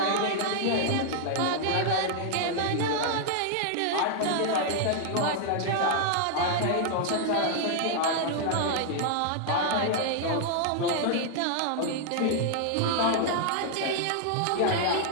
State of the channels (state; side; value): different; both; correlation 0.00